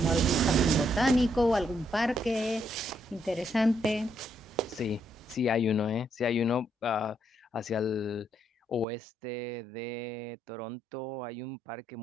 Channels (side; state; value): left; drops out; at 8.8 s